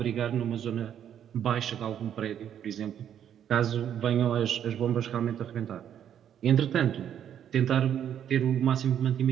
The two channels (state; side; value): quieter; left; 9.6 dB